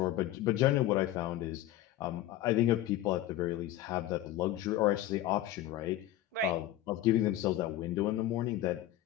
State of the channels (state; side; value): quieter; right; 13.4 dB